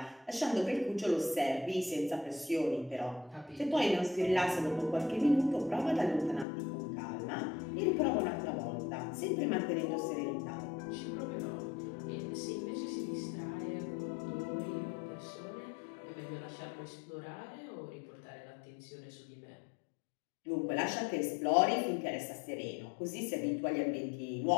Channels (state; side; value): drops out; right; at 6.5 s